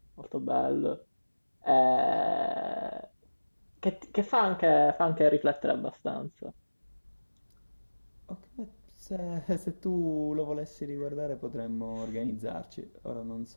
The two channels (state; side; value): inverted; both; correlation -1.00